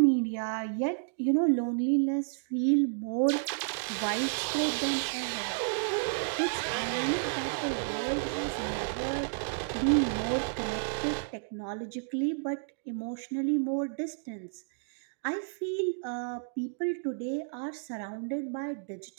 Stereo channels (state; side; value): silent; left; digital silence